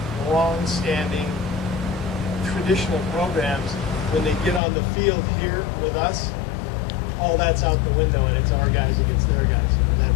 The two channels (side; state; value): right; drops out; at 4.6 s